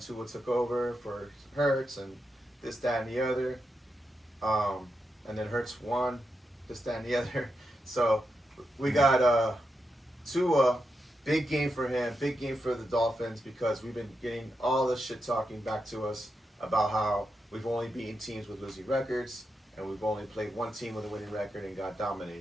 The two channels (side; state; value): both; normal; correlation 0.86